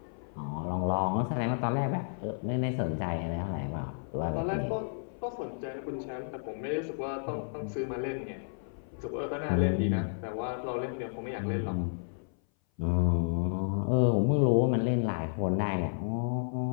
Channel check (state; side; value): silent; right; 57 dB below the other